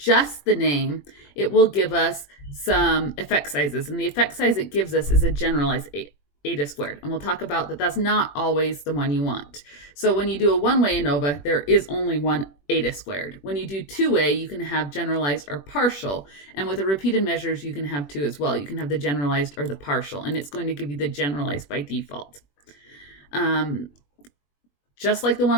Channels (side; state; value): right; late; 21 ms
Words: the name, it will give us some effect sizes, and the effect size it gives us is a generalized eta squared, and we'll talk about that that's not always the one you want. So when you do a one-way ANOVA, there is only one eta squared. When you do two-way, you can have generalized or partial, and with the repeated measures, you can have two as well. You can have the generalized or the partial, and it's going to give you the generalized by default. Just like the